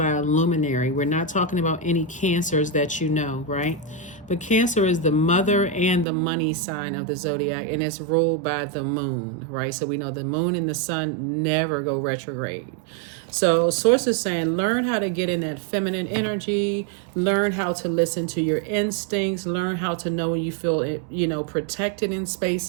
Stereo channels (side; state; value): left; drops out; at 6.1 s